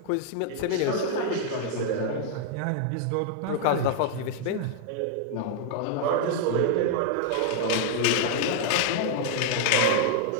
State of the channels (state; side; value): different; both; correlation -0.01